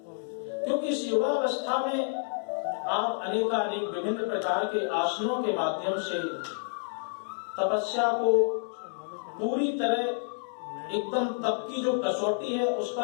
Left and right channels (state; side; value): silent; right; digital silence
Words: क्योंकि इस युवा अवस्था में आप अनेकानेक विभिन्न प्रकार के आसनों के माध्यम से तपस्या को पूरी तरह एकदम तप की जो कसौटी है उस